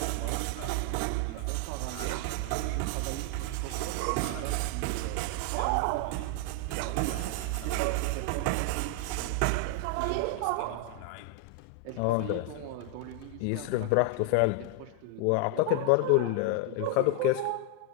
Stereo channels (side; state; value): both; different; correlation 0.00